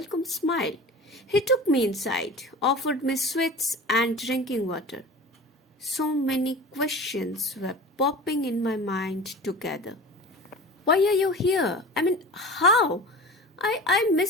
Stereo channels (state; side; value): normal; both; correlation 0.36